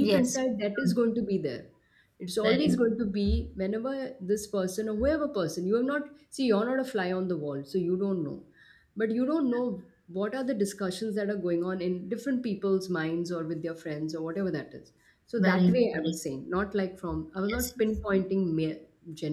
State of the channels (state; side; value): identical; both; correlation 1.00